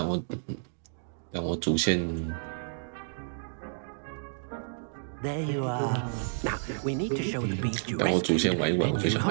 我主线。There you are. Now we need to show the beast you 但我主 rescued. 线玩一玩，我就想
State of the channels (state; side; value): silent; left; digital silence